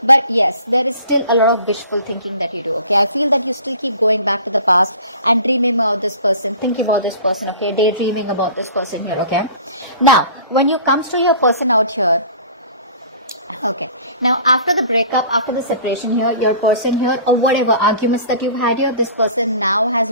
But yes, there is still a lot of wishful thinking that you do. Okay, I feel that you still keep going back to the past and dreaming about this person, thinking about this person. Okay, daydreaming about this person here. Okay, now when you comes to your person out here, okay, now after the breakup, after the separation here, your person here, or whatever arguments that you've had here, this person now has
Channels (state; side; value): inverted; both; correlation -0.45